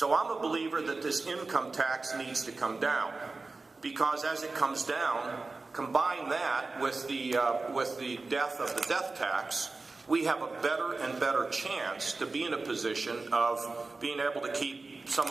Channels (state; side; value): quieter; left; 3.7 dB